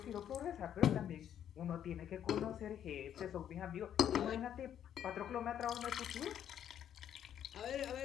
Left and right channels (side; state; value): right; quieter; 9.8 dB